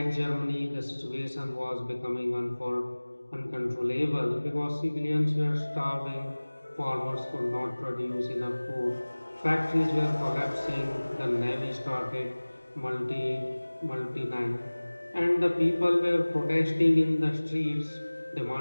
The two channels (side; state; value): both; inverted; correlation -1.00